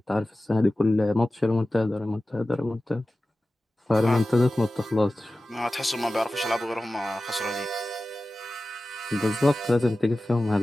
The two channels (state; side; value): normal; both; correlation 0.95